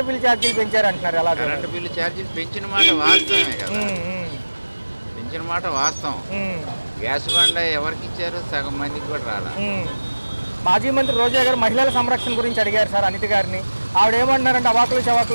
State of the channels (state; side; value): inverted; both; correlation -1.00